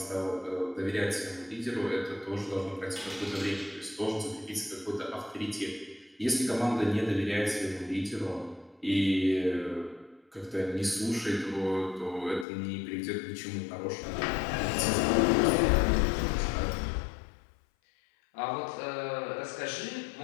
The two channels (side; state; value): right; drops out; at 12.5 s